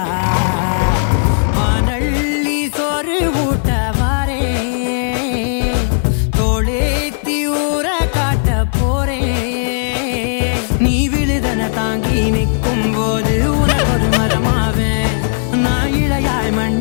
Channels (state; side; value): silent; right; digital silence